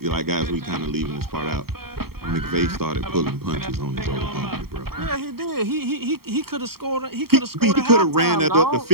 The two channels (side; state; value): left; late; 0.94 ms